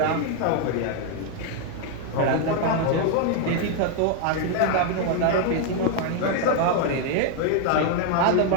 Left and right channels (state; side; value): different; both; correlation 0.00